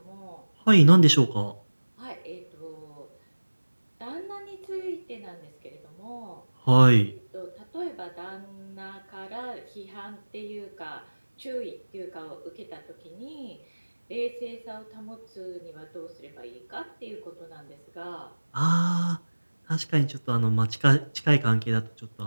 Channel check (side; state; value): both; inverted; correlation -1.00